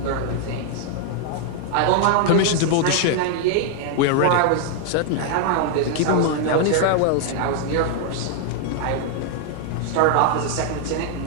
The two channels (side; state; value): both; different; correlation 0.00